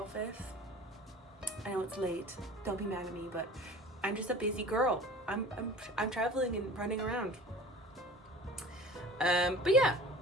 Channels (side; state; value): both; normal; correlation 0.41